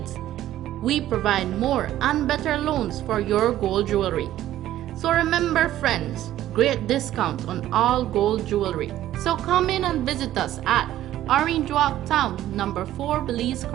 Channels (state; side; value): quieter; left; 13.3 dB